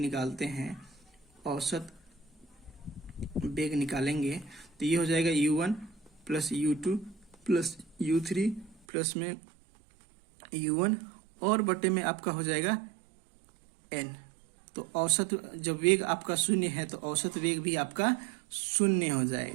हैं, औसत वेग निकालेंगे तो ये हो जाएगा U1 plus U2 plus U3 plus में U1 और बटे में आपका हो जाएगा N। तो औसत जब वेग आपका शून्य है तो औसत वेग भी आपका शून्य हो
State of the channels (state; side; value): drops out; left; at 8.8 s